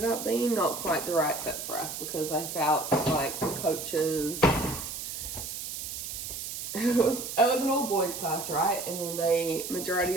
up being not quite the right fit for us because I felt like the coaches, it was an all boys class, right? And then they, majority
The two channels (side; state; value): right; noise; hiss, 7 dB below the sound